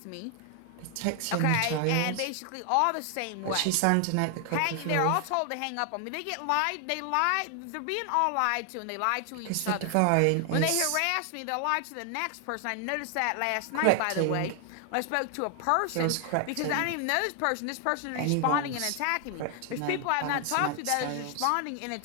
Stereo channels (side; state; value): both; different; correlation 0.00